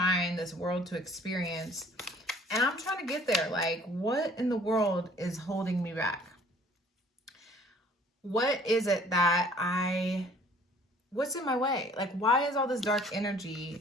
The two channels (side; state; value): both; normal; correlation 0.55